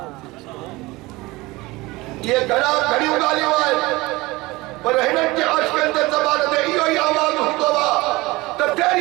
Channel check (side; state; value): left; quieter; 21.4 dB